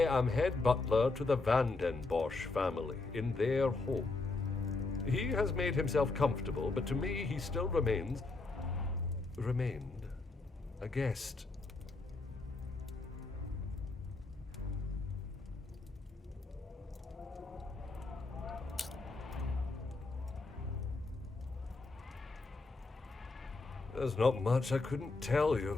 am head butler to the Van den Bosch family in their home. He has made himself comfortable, but to me he still remained a guest. There's not much I couldn't tell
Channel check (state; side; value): quieter; right; 3.6 dB